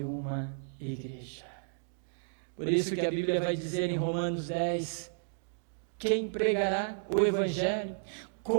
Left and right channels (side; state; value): left; silent; digital silence